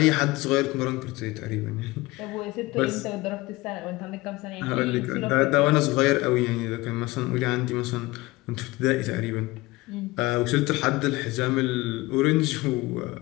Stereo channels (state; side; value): quieter; right; 20.7 dB